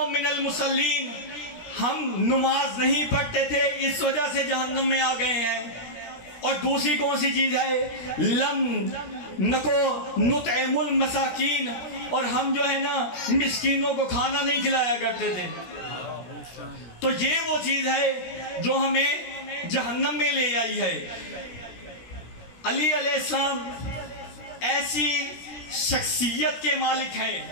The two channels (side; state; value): right; late; 17 ms